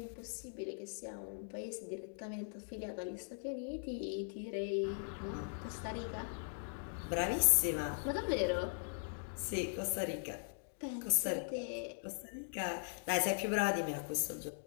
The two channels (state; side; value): silent; right; digital silence